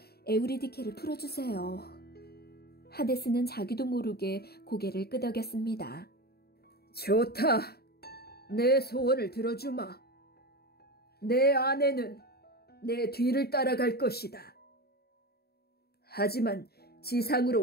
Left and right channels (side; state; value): right; late; 0.46 ms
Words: 에우리디케를 풀어주세요. 하데스는 자기도 모르게 고개를 끄덕였습니다. 좋다. 내 소원을 들어주마. 내 아내는 내 뒤를 따라갈 것이다. 하지만